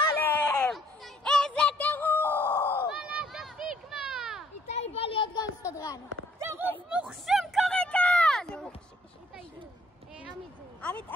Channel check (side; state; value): both; normal; correlation 0.64